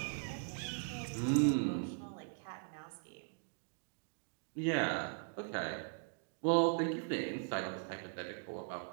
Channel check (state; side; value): silent; left; digital silence